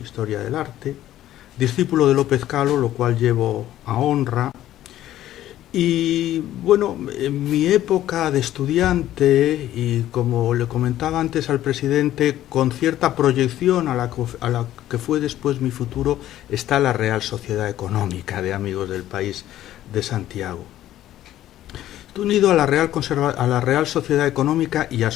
del Arte, discípulo de López Calo, lo cual llevo a honra. Y bueno, en mi época de estudiante, y como le comentaba antes al presidente, con cierta proyección a la que fue después mi futuro, está la Real Sociedad Económica de Amigos del País de Santiago. Estoy unido a la Real Sociedad Económica y a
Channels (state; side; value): quieter; right; 13.2 dB